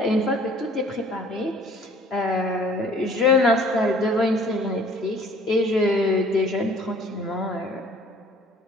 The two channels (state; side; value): normal; both; correlation 0.53